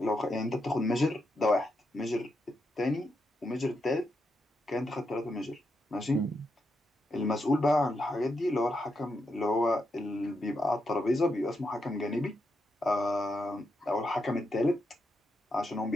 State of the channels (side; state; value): both; normal; correlation 0.83